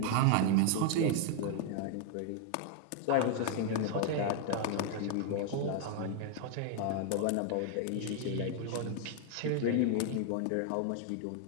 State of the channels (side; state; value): both; different; correlation 0.00